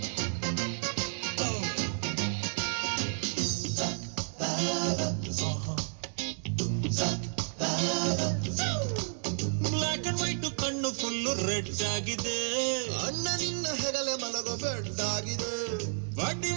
ಬ್ಲಾಕ್ ಅಂಡ್ ವೈಟ್ ಕಣ್ಣು ಫುಲ್ಲು ರೆಡ್ ಆಗಿದೆ. ಅಣ್ಣ ನಿನ್ನ ಹೆಗಲೆ ಮಲಗೋ ಬೆಡ್ ಆಗಿದೆ. ಬಡ್ಡಿ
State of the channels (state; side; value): silent; left; 56 dB below the other